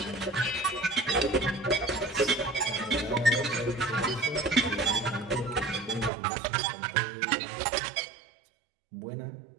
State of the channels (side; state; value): left; drops out; at 6.1 s